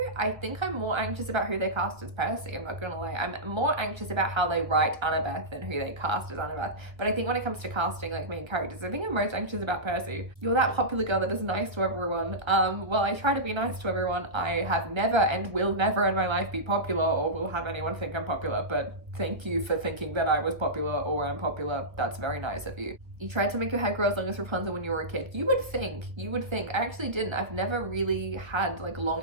I think I'm more anxious about who they cast as Percy. I'm not gonna lie. I'm more anxious about how they write Annabeth than who they cast as Annabeth. But I think when it comes to casting like main characters, I think I'm most anxious about Percy. You're that popular girl that is nice to everyone. Well, I try to be nice to everyone. I have never and will never in my life be popular or will have anyone think I'm popular, but thank you for thinking that I was popular or I'm popular. That's very nice of you. You tried to make your hair grow as long as Rapunzel when you were a kid. You would think. I actually didn't. I've never really had like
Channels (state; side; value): late; left; 1.1 ms